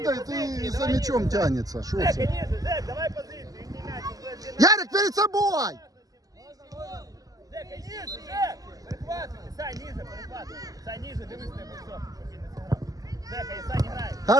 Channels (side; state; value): left; late; 0.17 ms